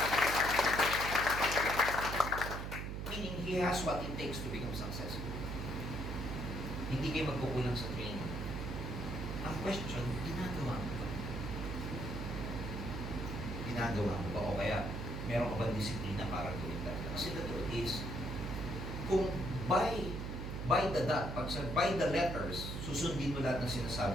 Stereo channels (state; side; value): noise; right; hum, 4 dB below the sound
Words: Meaning, he has what it takes to become successful. Hindi kayo magkukulang sa training. Ang question, ginagawa mo ba? Ginagawa mo ba? O kaya, meron ka ba disiplina para gawin talaga? Kasi the truth is, kung by the dot, by the letters, susundin mo lahat ng